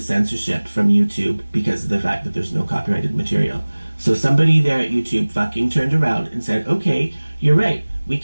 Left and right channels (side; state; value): both; inverted; correlation -1.00